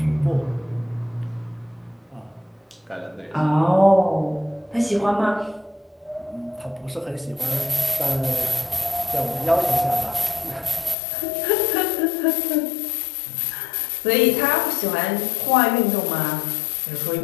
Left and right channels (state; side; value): drops out; right; at 11.0 s